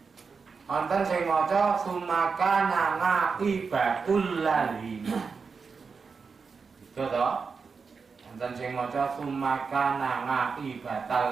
Wonten sing maca sumakana ngakibatul ladina. Itu to. Wonten sing maca sumakana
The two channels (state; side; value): quieter; left; 5.2 dB